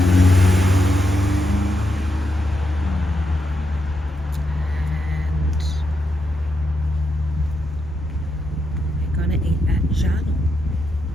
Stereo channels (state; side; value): normal; both; correlation 0.83